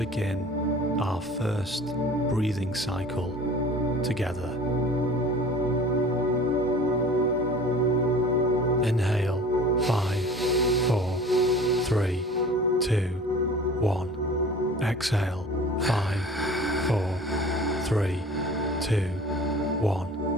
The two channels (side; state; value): both; normal; correlation 0.43